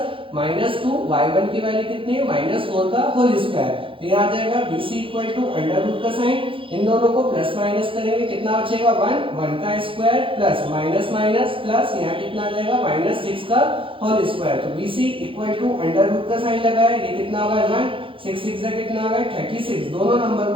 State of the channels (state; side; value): late; left; 0.25 ms